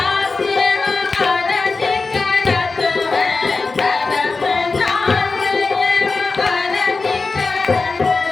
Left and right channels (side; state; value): right; quieter; 4.0 dB